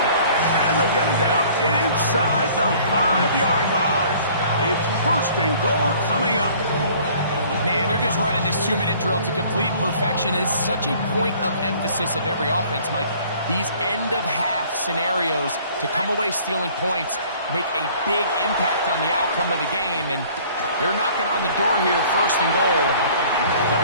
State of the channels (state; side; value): inverted; both; correlation -0.53